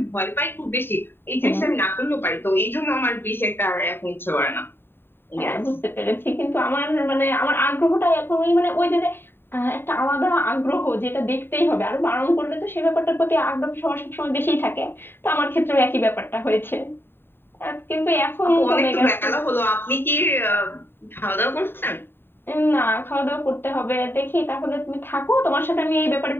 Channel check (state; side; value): late; right; 0.11 ms